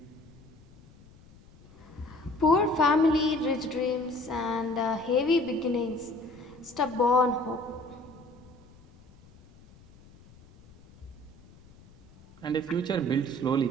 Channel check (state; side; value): noise; left; rumble, 24 dB below the sound